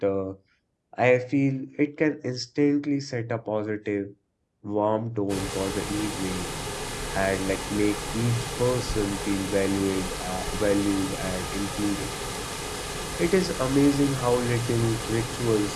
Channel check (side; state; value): both; identical; correlation 1.00